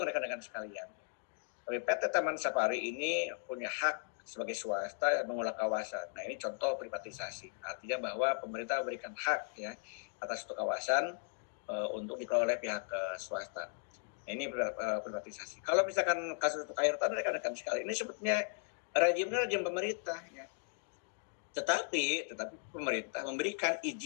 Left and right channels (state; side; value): silent; right; 53 dB below the other